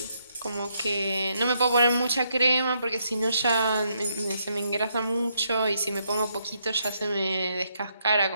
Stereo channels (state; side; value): inverted; both; correlation -0.76